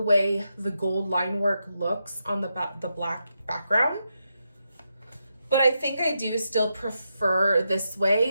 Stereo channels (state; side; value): inverted; both; correlation -0.85